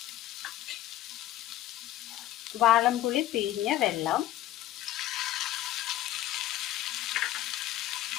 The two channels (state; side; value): quieter; right; 14.0 dB